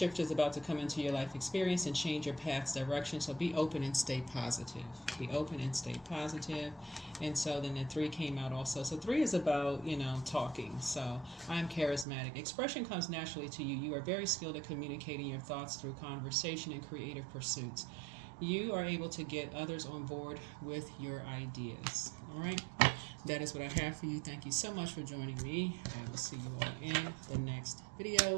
is about to come into your life experience and change your path's direction. So be open and stay positive. Be open and stay positive. And so then the 3 came out also. So 3 is about, talking. So I'm charismatic. Expression comes naturally to you. You are very skilled at communicating your thoughts through conversation and creative pursuits. You are able to get others on board with your ideas. All right. That is what I have for you. Thank you so much for joining me. I will see you all in the next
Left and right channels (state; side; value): drops out; left; at 12.1 s